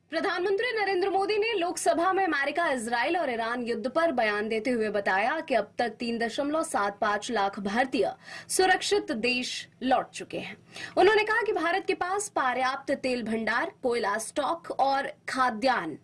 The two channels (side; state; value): both; identical; correlation 1.00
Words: प्रधानमंत्री नरेंद्र मोदी ने लोकसभा में अमेरिका, इजराइल और ईरान युद्ध पर बयान देते हुए बताया कि अब तक 3.75 लाख भारतीय सुरक्षित देश लौट चुके हैं। उन्होंने कहा कि भारत के पास पर्याप्त तेल भंडार, कोयला स्टॉक और खाद्यान्न